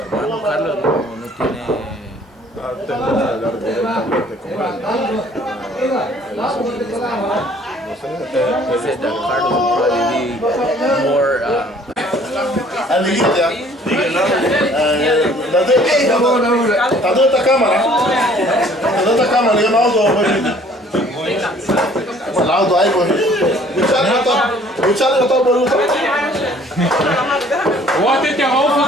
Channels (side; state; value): both; normal; correlation 0.56